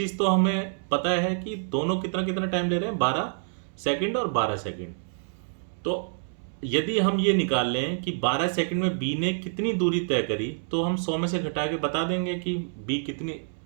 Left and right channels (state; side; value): silent; left; 60 dB below the other